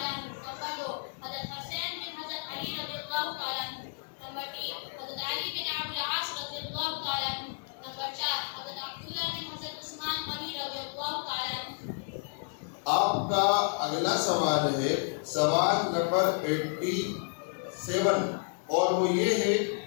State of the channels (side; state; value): right; silent; digital silence